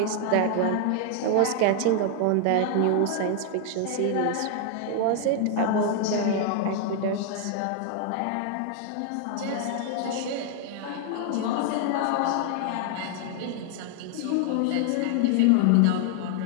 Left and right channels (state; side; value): different; both; correlation 0.00